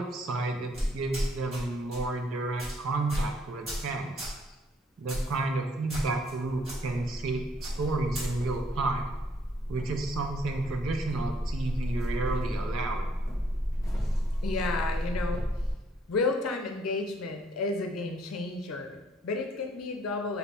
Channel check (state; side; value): normal; both; correlation 0.66